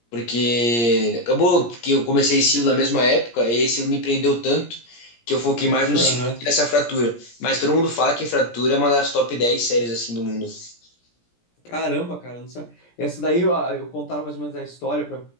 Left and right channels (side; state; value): right; late; 17 ms